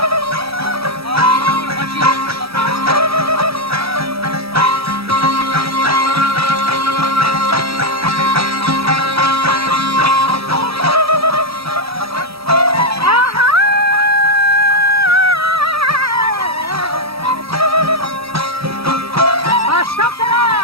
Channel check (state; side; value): late; left; 0.77 ms